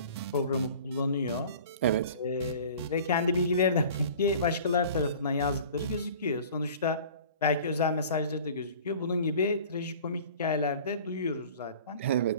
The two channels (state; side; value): inverted; both; correlation -0.44